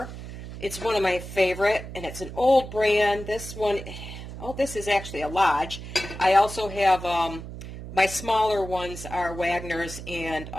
It's one of my favorite, and it's an old brand. This one, oh, this is actually a Lodge. I also have my smaller ones are Wagner's and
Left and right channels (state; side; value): noise; right; hum, 11 dB below the sound